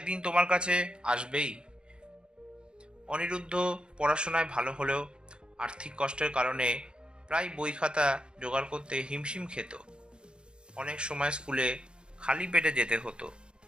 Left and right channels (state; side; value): late; left; 0.052 ms